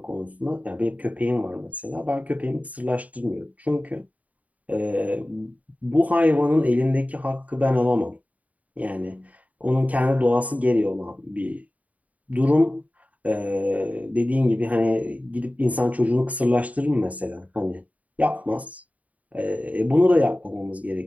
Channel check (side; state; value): left; late; 0.071 ms